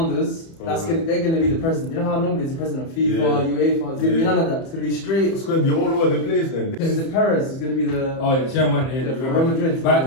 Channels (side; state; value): right; late; 31 ms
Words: they're gonna be the president. You know how normally it's the president of FIFA, UEFA. It's gonna be none of that. It's gonna be straight. It's gonna be all over the place then. Is it Perez? It's gonna be the chairman. Real Madrid.